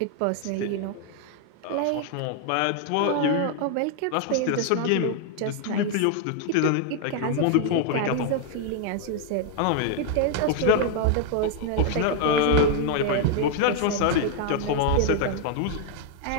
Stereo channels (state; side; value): different; both; correlation 0.00